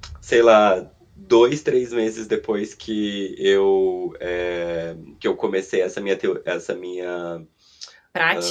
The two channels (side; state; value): both; identical; correlation 1.00